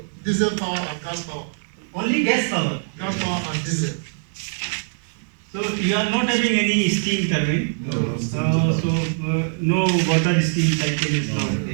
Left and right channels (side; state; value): left; silent; digital silence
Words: diesel power and gas power. Only gas power. Gas power and diesel. So you are not having any steam turbine. No. No water steam cycle is not